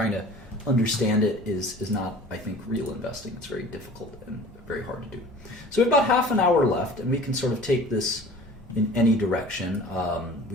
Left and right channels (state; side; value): normal; both; correlation 0.45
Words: to understand it is not, I think, real investing. It's very difficult and very hard to do. So we have about half an hour left, and we can sort of take this in any direction.